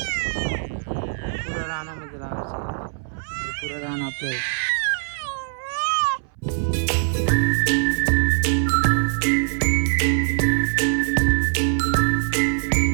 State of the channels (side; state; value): left; silent; 62 dB below the other